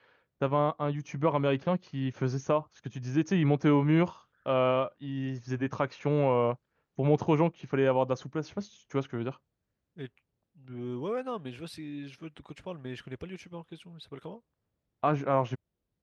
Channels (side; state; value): both; identical; correlation 1.00